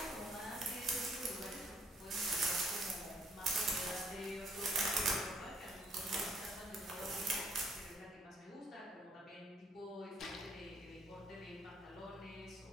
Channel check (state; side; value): normal; both; correlation 0.65